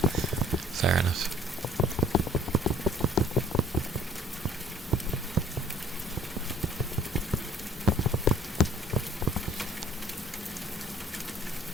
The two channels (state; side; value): normal; both; correlation 0.56